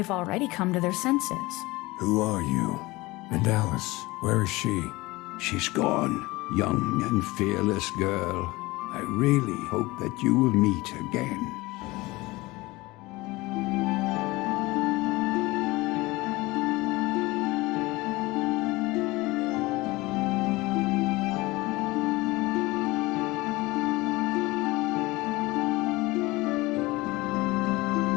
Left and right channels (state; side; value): quieter; right; 21.1 dB